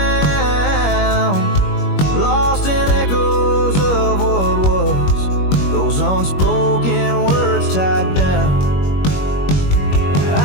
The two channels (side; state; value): right; late; 21 ms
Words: lost in echoes of what was, those unspoken words tied down.